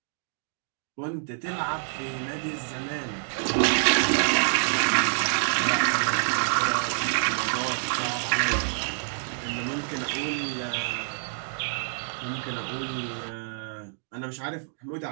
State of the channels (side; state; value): left; silent; digital silence